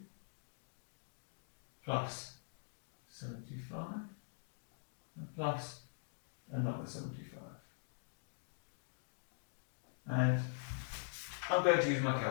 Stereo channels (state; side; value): silent; right; digital silence